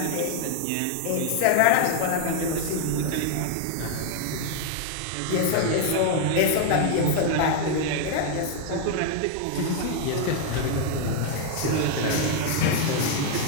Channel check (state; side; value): different; both; correlation 0.00